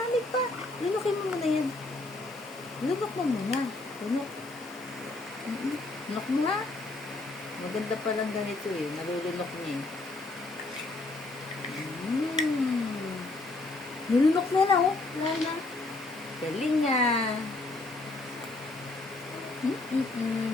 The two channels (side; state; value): right; quieter; 3.0 dB